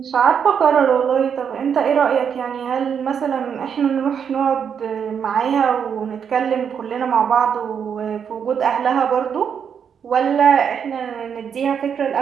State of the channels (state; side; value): quieter; left; 7.4 dB